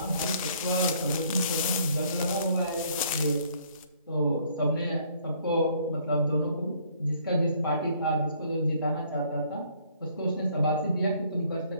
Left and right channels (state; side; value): inverted; both; correlation -0.62